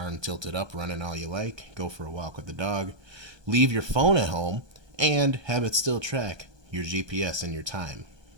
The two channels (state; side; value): late; left; 1.2 ms